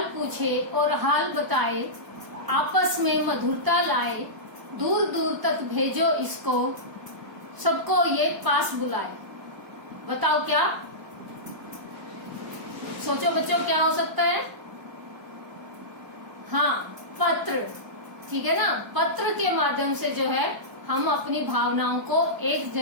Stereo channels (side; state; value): left; late; 1.0 ms